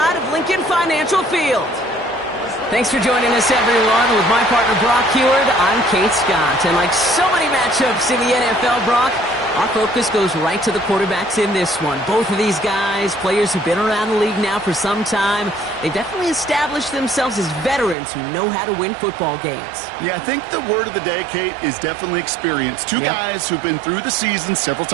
of Lincoln Financial Field. Thanks for joining us, everyone. With my partner, Brock Heward, I'm Kate Scott. And like so many matchups in the NFL, Brock, our focus goes right to the quarterbacks in this one. Both of these guys, players who've been around the league now for some time, they've definitely established themselves as veterans who know how to win football games. Yeah, I think the word of the day, Kate, is definitely experience. Two guys who've been through the season several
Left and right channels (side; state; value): left; drops out; at 17.9 s